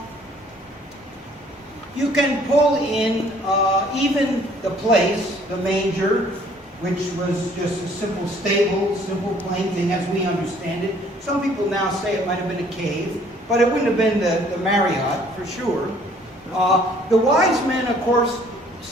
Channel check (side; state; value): both; normal; correlation 0.59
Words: You can pull in even the place, the manger, which was just a simple stable, simple plain thing as we understand it. Some people now say it might have been a cave, but it wouldn't have been the Marriott for sure. The wise men, of course,